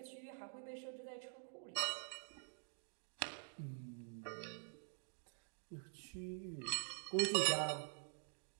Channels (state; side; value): silent; left; digital silence